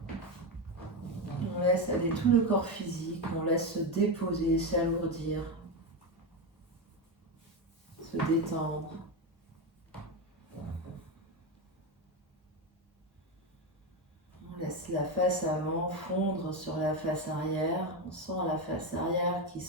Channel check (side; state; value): both; normal; correlation 0.13